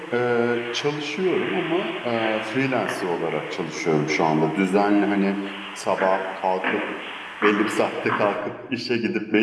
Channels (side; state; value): both; identical; correlation 1.00